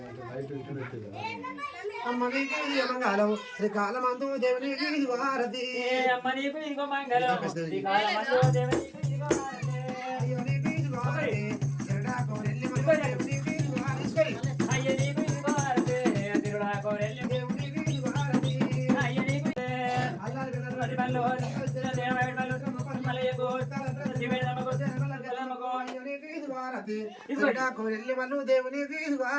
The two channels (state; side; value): identical; both; correlation 1.00